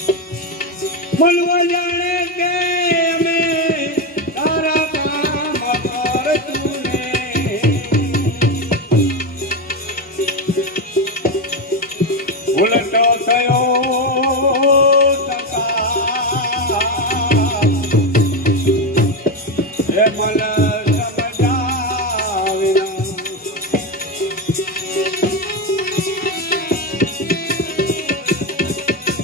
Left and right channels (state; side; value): normal; both; correlation 0.12